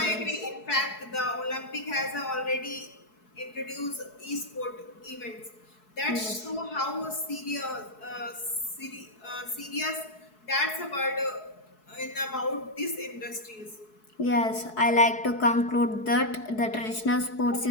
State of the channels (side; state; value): right; late; 4.7 ms